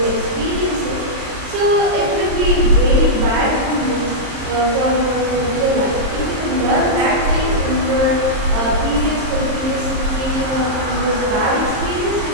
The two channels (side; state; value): left; late; 23 ms